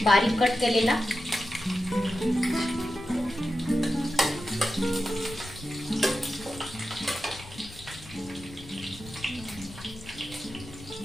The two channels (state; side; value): noise; left; rumble, 17 dB below the sound